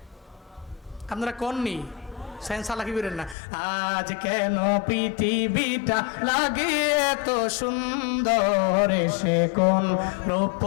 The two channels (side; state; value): right; drops out; at 3.4 s